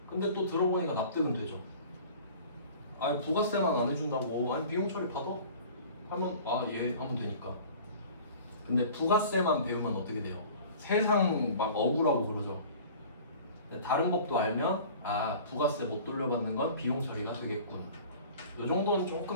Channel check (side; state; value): both; inverted; correlation -0.44